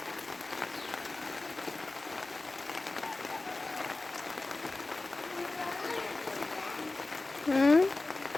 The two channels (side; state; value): right; quieter; 3.1 dB